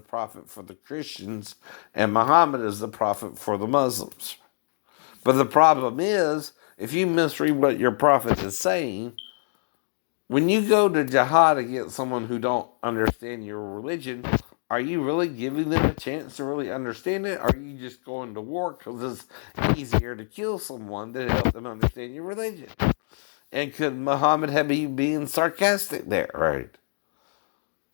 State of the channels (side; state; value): right; silent; digital silence